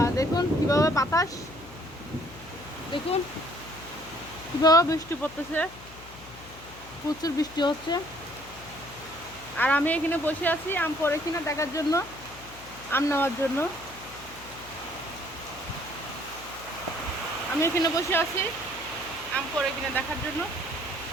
দেখুন কিভাবে বাতাস, দেখুন কিভাবে বৃষ্টি পড়তেছে, প্রচুর বৃষ্টি হচ্ছে। আর আমি এখানে বসে আছি আম পড়ে কিনা দেখার জন্য, আম নেওয়ার জন্য। আমি এখানে বসে আছি আম পড়ে কিনা দেখার জন্য।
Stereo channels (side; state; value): left; noise; hum, 19 dB below the sound